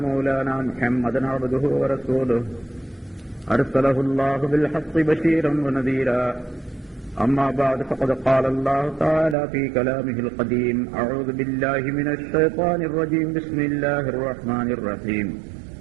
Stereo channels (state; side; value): drops out; left; at 9.3 s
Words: مولانا محمدا عبده ورسوله أرسله الله بالحق بشيرا ونذيرا أما بعد فقد قال الله تعالى في كلامه القديم أعوذ بالله من الشيطان الرجيم بسم الله الرحمن الرحيم